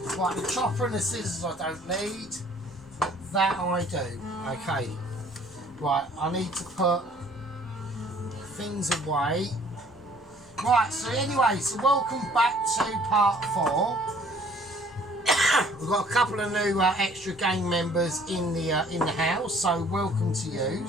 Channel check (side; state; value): both; normal; correlation 0.56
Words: Right, the chopper and the scissors I don't need. But that I do. Okay. Right, I need to put things away. Right, so anyway, so welcome back to part 4. We've got a couple of new extra gang members in the house, so welcome to